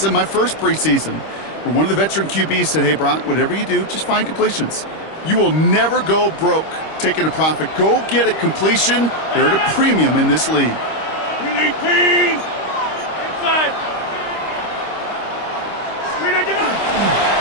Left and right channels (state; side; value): late; right; 25 ms